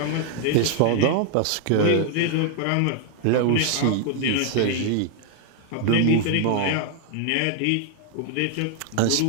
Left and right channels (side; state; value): both; different; correlation 0.00